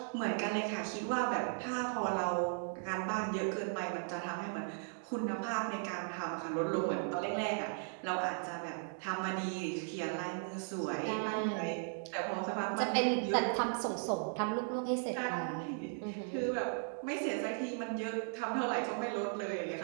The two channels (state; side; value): silent; left; 53 dB below the other